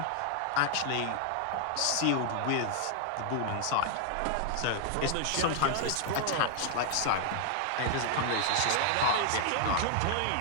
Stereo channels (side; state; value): both; different; correlation 0.00